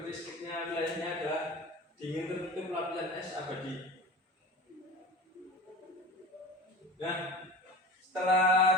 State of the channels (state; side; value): normal; both; correlation 0.34